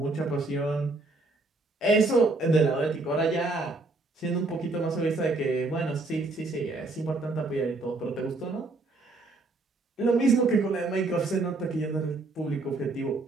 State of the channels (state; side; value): quieter; left; 3.2 dB